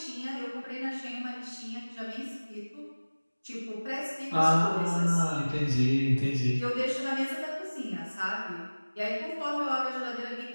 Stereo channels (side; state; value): both; inverted; correlation -1.00